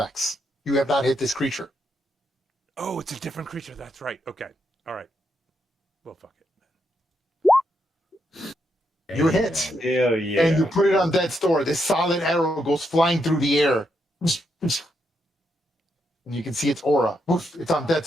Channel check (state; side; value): normal; both; correlation 0.80